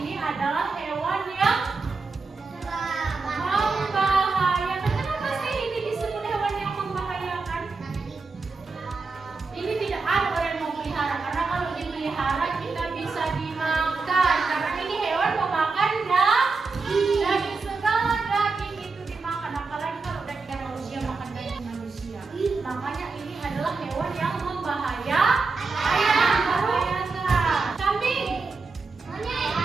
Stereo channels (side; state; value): left; quieter; 4.2 dB